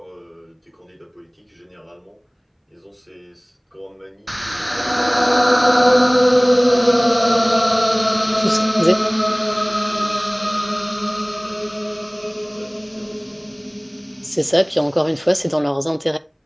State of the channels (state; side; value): identical; both; correlation 1.00